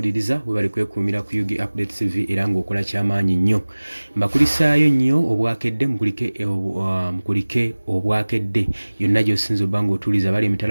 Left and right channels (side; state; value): both; inverted; correlation -1.00